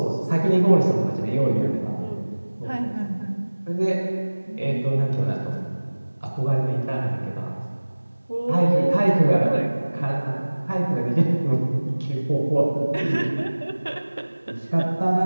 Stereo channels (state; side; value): inverted; both; correlation -1.00